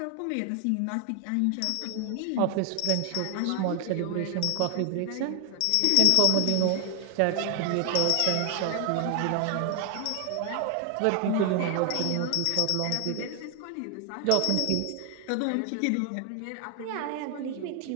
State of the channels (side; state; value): both; different; correlation 0.00